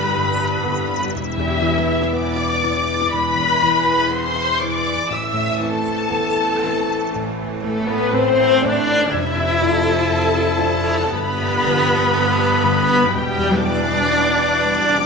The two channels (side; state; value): both; normal; correlation 0.47